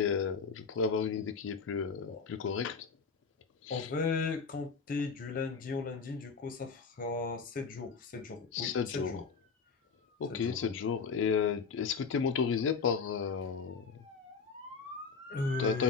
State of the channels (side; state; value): right; quieter; 5.4 dB